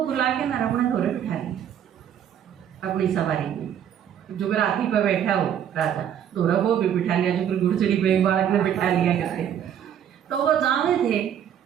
बुला के ना अपने घोड़े बिठा लिया अपनी सवारी में, जो हाथी पर बैठा हो राजा दोरा वो भी बिठा लिया, जो घुड़चड़ी पे बालक ने बिठा लिया करते। तो वो जावे थे,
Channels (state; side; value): quieter; left; 9.5 dB